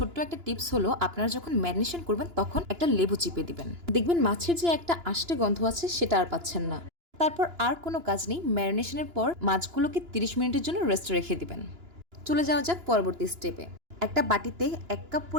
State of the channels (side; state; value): left; late; 2.9 ms